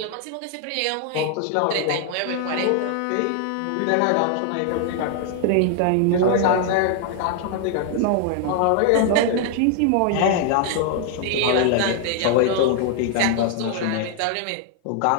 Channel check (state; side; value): different; both; correlation 0.00